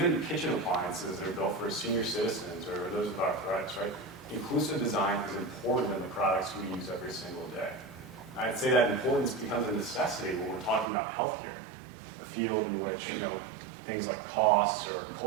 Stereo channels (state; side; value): drops out; left; at 10.9 s